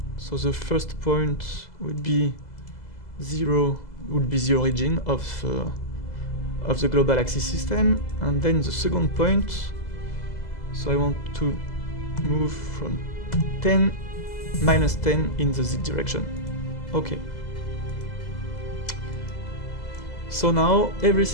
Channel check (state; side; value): late; right; 2.0 ms